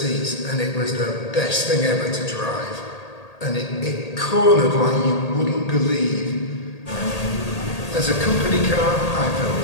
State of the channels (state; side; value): late; right; 1.8 ms